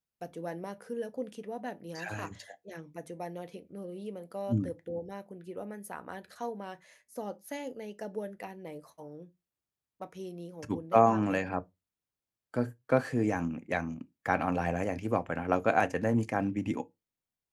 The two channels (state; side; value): identical; both; correlation 1.00